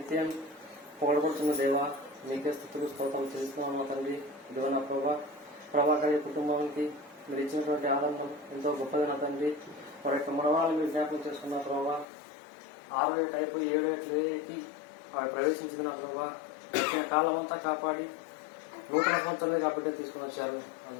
పొగడబడుతున్న దేవ, నీకే స్థుతులు స్తోత్రం చేసుకున్నాను తండ్రి. ఇదిగో నా ప్రభాకర్ కుటుంబానికి మీరు ఇచ్చినటువంటి ఆనందం ఎంతో గొప్పది నా తండ్రి. వారి యొక్క మనవాళ్ళు మీరు జ్ఞాపకం చేసుకున్న ప్రభావ, 6 ఏట అయిపోయి 7 ఏటకి వారు ప్రవేశించిన ప్రభావ, వచ్చిన కాలం అంతా కాపాడి నూతన సంవత్సరాలు కాబట్టి తీసుకుని వచ్చారు.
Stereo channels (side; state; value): right; drops out; at 12.1 s